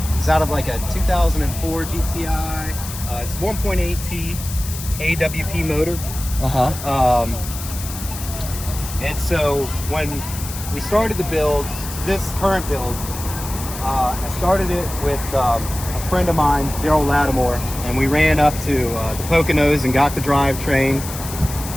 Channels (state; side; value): noise; left; hiss, 10 dB below the sound